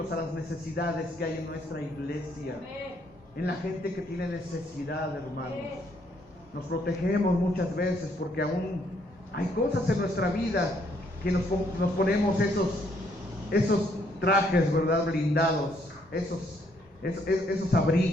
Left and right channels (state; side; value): normal; both; correlation 0.69